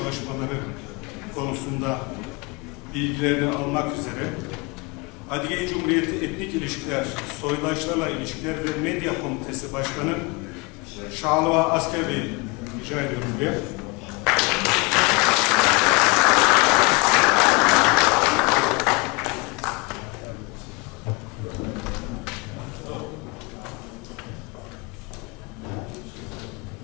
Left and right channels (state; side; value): quieter; right; 28.2 dB